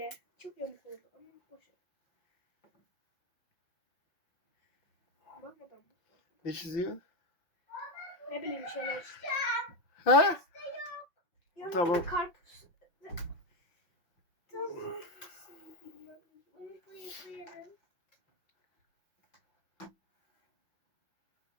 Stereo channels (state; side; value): late; right; 5.8 ms